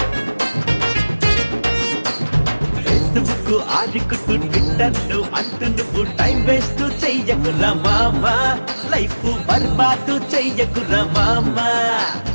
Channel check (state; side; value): inverted; both; correlation -1.00